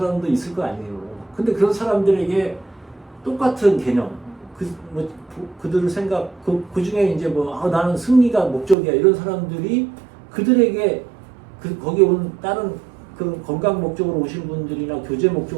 있을 거 아니에요. 근데 그런 사람들에게 똑같은 개념, 그들 생각, 그 중에 이제 나는 승리가 목적이야 이런 사람들이 그들에게 거기 온 다른 그 건강 목적으로 오신 분들이나 교제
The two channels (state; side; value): drops out; left; at 8.8 s